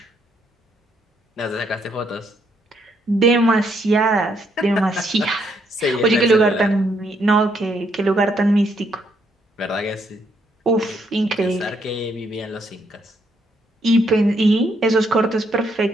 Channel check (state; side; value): normal; both; correlation 0.73